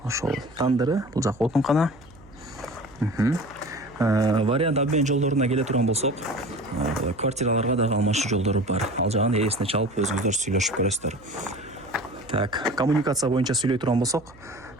ошол тандыры, бул жак отункана. Вариант обмен жолдоруна келе турган болсок, квартираларга дагы алмашуу жолдору бар. Ал жагын ээсине чалып өзүңүздөр сүйлөшүп көрөсүздөр. Так, коммуникация боюнча сүйлөй турган болсок,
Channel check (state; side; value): noise; right; hum, 24 dB below the sound